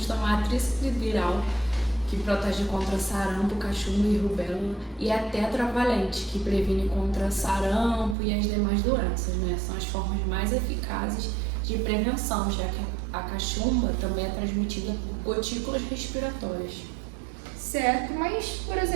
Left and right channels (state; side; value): drops out; left; at 8.2 s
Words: tomar a tríplice viral, que protege contra sarampo, cachumba e rubéola, e a tetravalente, que previne contra sarampo e as demais doenças, né? São as formas mais eficazes de prevenção, já que a cachumba também é transmitida por gotículas respiratórias. Certo, mas, por